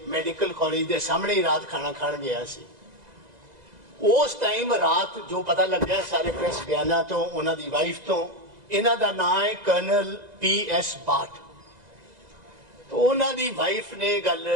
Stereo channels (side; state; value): left; late; 2.0 ms